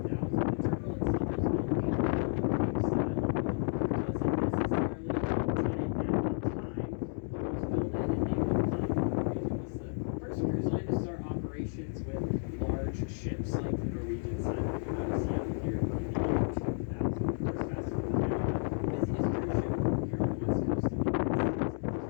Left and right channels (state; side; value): silent; right; 56 dB below the other